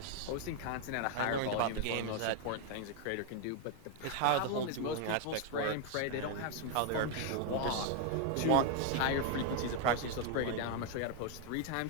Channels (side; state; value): both; different; correlation 0.00